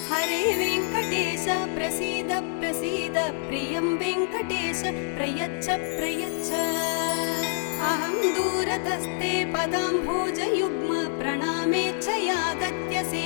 हरे वेङ्कटेश प्रसीद प्रसीद प्रियं वेङ्कटेश प्रयच्छ प्रयच्छ। अहं दूरतस्ते पदाम्भोजयुग्म प्रणामेच्छयागत्य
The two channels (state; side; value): silent; right; digital silence